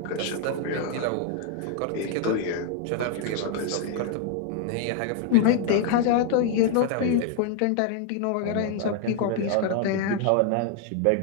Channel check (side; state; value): both; different; correlation 0.00